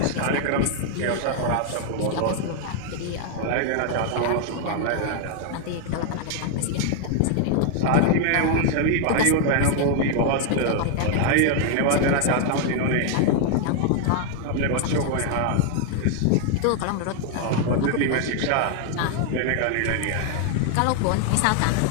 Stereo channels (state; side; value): different; both; correlation 0.00